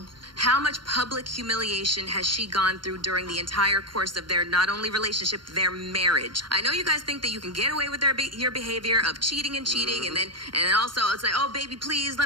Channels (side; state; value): left; late; 0.72 ms